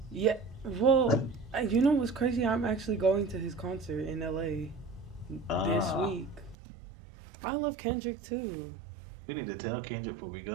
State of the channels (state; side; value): drops out; left; at 6.6 s